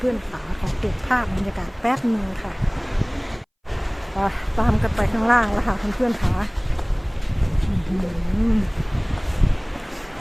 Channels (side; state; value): both; identical; correlation 1.00